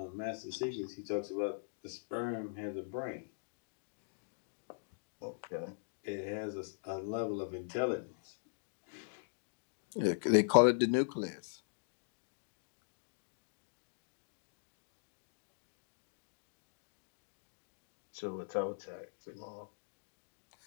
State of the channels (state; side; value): silent; right; digital silence